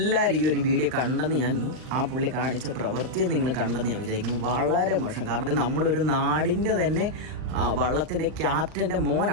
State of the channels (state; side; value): late; left; 39 ms